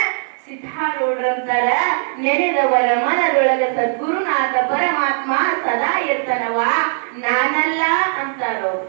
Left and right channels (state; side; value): silent; left; digital silence